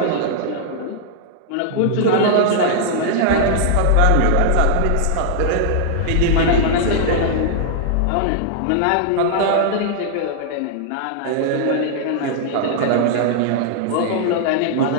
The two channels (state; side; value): different; both; correlation -0.01